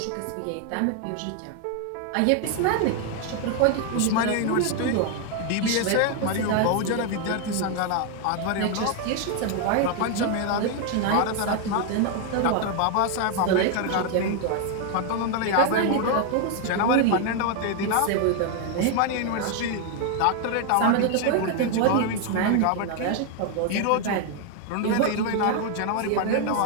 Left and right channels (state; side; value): different; both; correlation 0.01